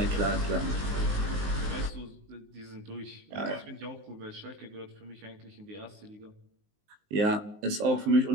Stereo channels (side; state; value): left; late; 19 ms